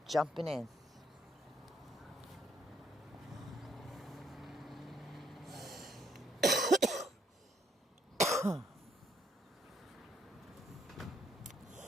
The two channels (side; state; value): both; normal; correlation 0.70